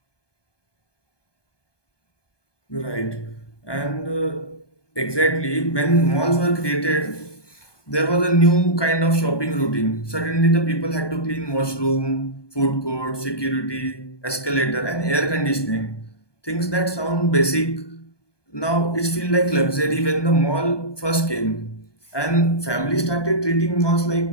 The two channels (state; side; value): late; right; 1.2 ms